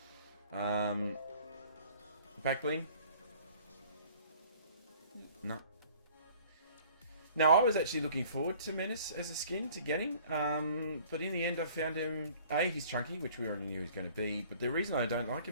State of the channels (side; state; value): both; inverted; correlation -0.52